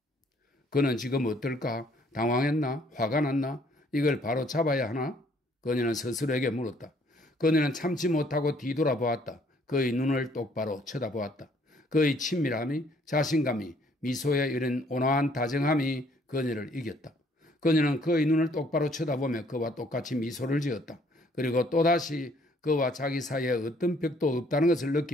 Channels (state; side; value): normal; both; correlation 0.63